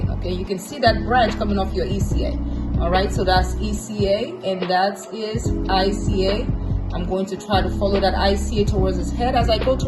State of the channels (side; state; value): both; identical; correlation 1.00